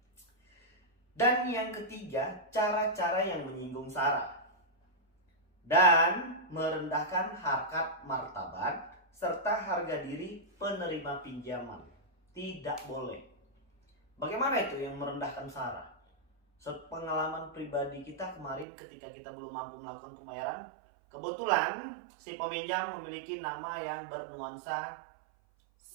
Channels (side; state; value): left; drops out; at 18.7 s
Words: Dan yang ketiga, cara-cara yang menyinggung sara dan merendahkan harkat martabat serta harga diri penerima pinjaman. Tidak boleh. Bagaimana itu yang merendahkan sara? Pengalaman pribadi kita kemarin ketika kita belum mampu melakukan pembayaran, kebetulan si peminjam memiliki nama yang bernuansa